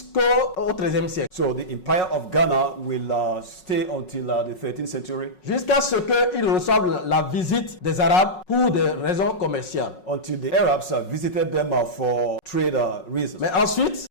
XIIIe siècle. So the empire of Ghana will stay until the 13th century. Jusqu'à ce qu'ils reçoivent la visite des Arabes pour des raisons commerciales. Until the Arabs visited them for trade reasons. Mais ensuite,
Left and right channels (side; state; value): right; late; 5.4 ms